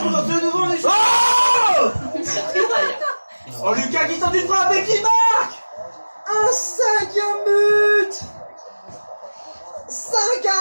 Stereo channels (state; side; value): inverted; both; correlation -1.00